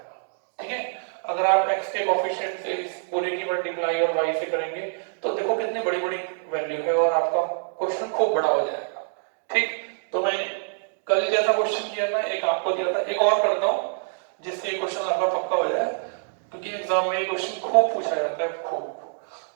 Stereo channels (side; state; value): left; silent; digital silence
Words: ठीक है, अगर आप x के कोएफिशिएंट से इस पूरे की मल्टीप्लाई और y से करेंगे तो देखो कितनी बड़ी बड़ी वैल्यू है और आपका क्वेश्चन खूब बड़ा हो जाएगा। ठीक, तो मैं कल जैसा क्वेश्चन किया था, एक आपको दिया था, एक और करता हूं जिससे क्वेश्चन आपका पक्का हो जाए, क्योंकि एग्जाम में ये क्वेश्चन खूब पूछा जाता है, खूब।